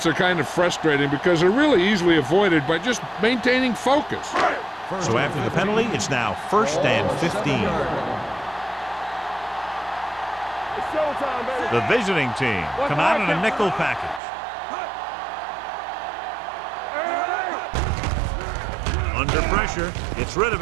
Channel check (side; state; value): left; drops out; at 14.2 s